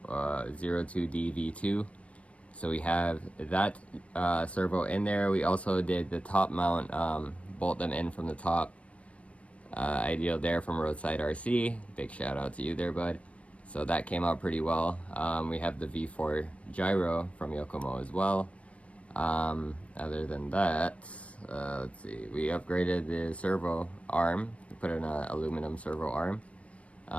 02DV2. So we have that servo in there. We also did the top mount, bolt them in from the top. Ideal there from Roadside RC. Big shout out to you there, bud. So that came out pretty well. We have the V4 gyro from Yokomo as well. Other than that, let's see, we upgraded the servo arm. We put in an aluminum servo arm.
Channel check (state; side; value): late; right; 0.063 ms